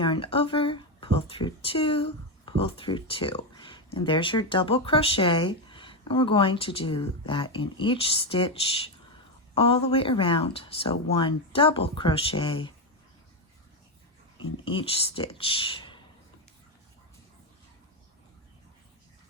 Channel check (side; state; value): both; normal; correlation 0.09